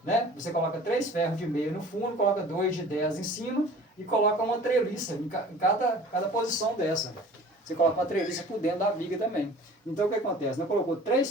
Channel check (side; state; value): both; normal; correlation 0.45